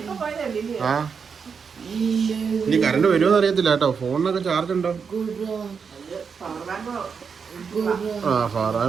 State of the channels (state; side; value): quieter; left; 6.0 dB